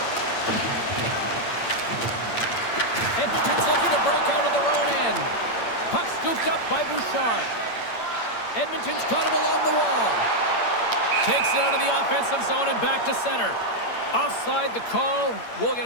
Edmonton's looking to break out of their own end. Puck scooped up by Bouchard. Edmonton's got it along the wall. Takes it out of the offensive zone and back to center. Offside the call. We'll get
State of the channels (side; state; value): right; late; 8.7 ms